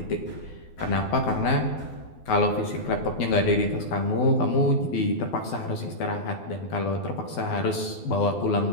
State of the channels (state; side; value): late; right; 12 ms